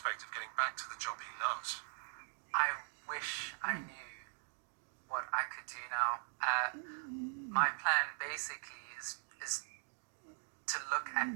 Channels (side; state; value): left; silent; 51 dB below the other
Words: of getting back to the job he loves. I wish I knew what I could do now. My plan basically is to look at